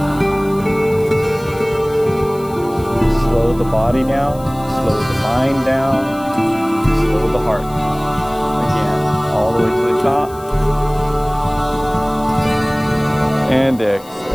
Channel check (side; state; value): left; noise; hiss, 22 dB below the sound